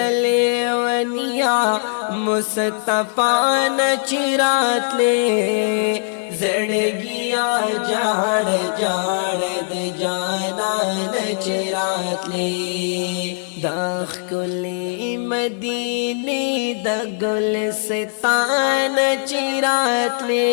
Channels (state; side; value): silent; right; 57 dB below the other